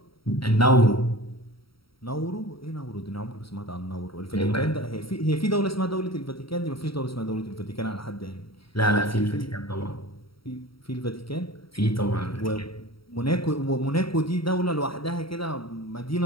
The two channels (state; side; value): late; right; 0.75 ms